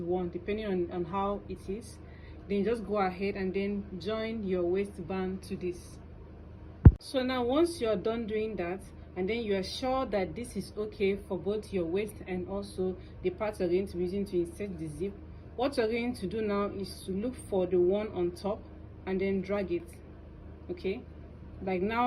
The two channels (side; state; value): both; identical; correlation 1.00